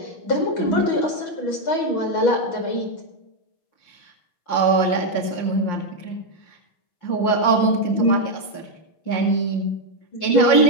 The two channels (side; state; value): right; late; 5.6 ms